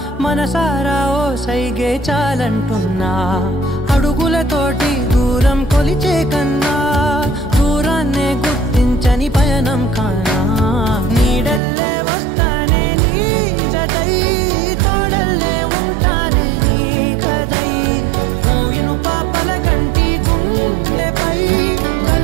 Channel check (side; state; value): left; drops out; at 11.6 s